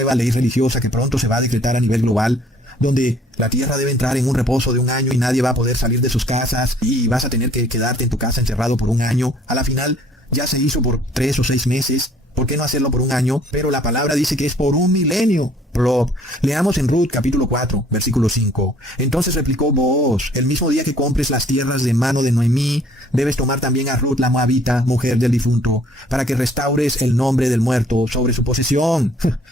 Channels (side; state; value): both; normal; correlation 0.58